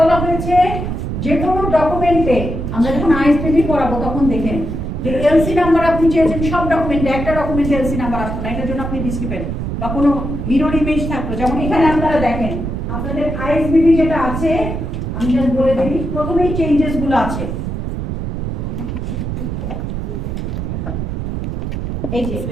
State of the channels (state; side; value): noise; right; rumble, 4 dB below the sound